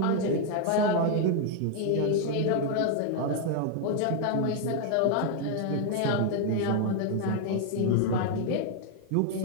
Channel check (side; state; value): both; different; correlation 0.00